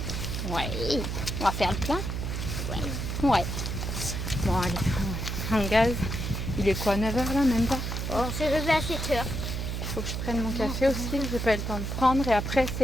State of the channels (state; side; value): noise; right; hum, 3 dB below the sound